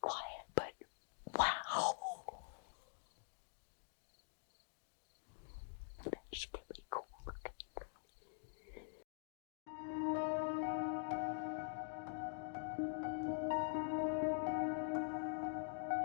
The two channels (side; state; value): right; silent; digital silence